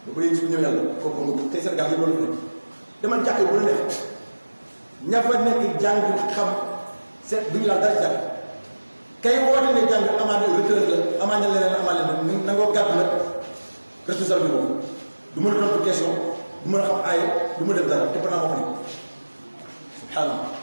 ba ko yéegi su ñëw yàlla kooku nga tey Sénégal yi loolu fi nekk dama jàkk bu la nekk ña fa nekk jàng xam seet duñu laal dara jàng kay woote ne jàng amaana retraite la amaana leneen amaana leneen nangoo gàddu nag responsable bi boobu du mën a tontu question du mën a xam aaye du ma def dara te pendant moo fa nekk subhanallah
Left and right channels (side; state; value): both; inverted; correlation -1.00